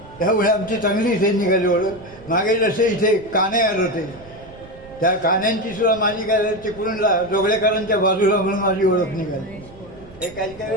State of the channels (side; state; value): right; noise; rumble, 21 dB below the sound